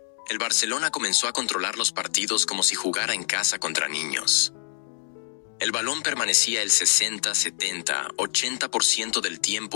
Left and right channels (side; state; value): right; silent; digital silence